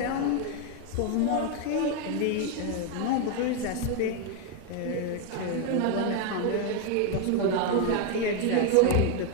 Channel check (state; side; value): different; both; correlation 0.01